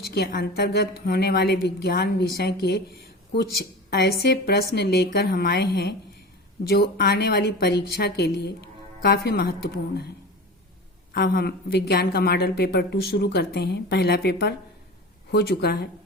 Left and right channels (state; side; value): normal; both; correlation 0.32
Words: के अंतर्गत होने वाले विज्ञान विषय के कुछ ऐसे प्रश्न लेकर हम आए हैं जो आने वाली परीक्षा के लिए काफ़ी महत्वपूर्ण है। अब हम विज्ञान का मॉडल पेपर 2 शुरू करते हैं। पहला पेपर हो चुका है।